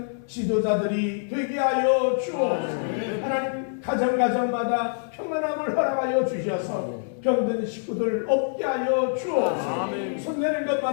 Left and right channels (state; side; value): silent; right; 61 dB below the other